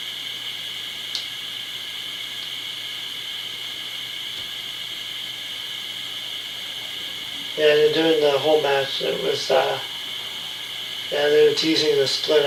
Yeah, and during the whole match, it was, they were teasing the split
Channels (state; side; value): identical; both; correlation 1.00